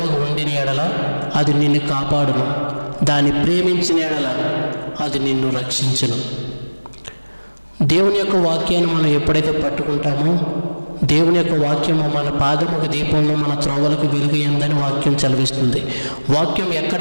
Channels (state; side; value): inverted; both; correlation -1.00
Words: ఉండిన ఎడల అది నిన్ను కాపాడును, దాన్ని ప్రేమించిన ఎడల అది నిన్ను రక్షించును. దేవుని యొక్క వాక్యాన్ని మనం ఎప్పుడైతే పట్టుకుంటామో, దేవుని యొక్క వాక్యము మన పాదముకు దీపంలో, మన త్రోవలకు వెలుగుయందని వాక్యం చదివిస్తుంది. వాక్యం ఎక్కడ